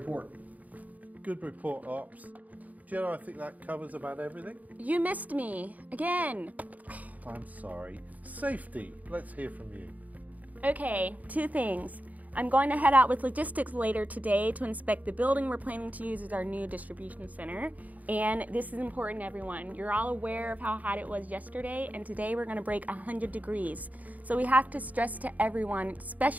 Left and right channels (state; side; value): late; left; 0.077 ms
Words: Good report, Ops. Jenna, I think that covers about everything. You missed me, again. I'm sorry. Safety, let's hear from you. Okay, 2 things. I'm going to head out with logistics later today to inspect the building we're planning to use as our new distribution center. And this is important, everyone. You're all aware of how hot it was yesterday, and today we're going to break 100 degrees. So we have to stress to everyone,